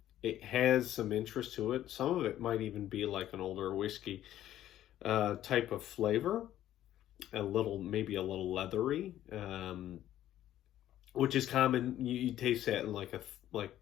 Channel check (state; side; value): quieter; right; 12.6 dB